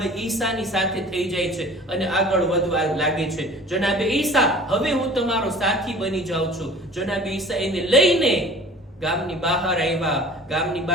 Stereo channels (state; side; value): normal; both; correlation 0.45